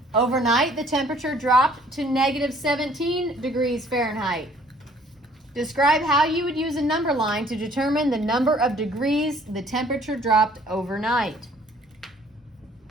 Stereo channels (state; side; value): normal; both; correlation 0.58